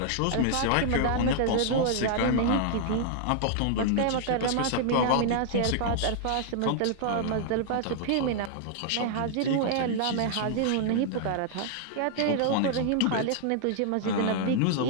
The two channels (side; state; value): both; different; correlation -0.01